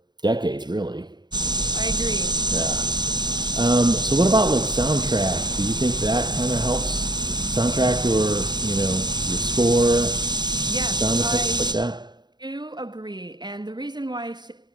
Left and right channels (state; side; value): late; left; 0.21 ms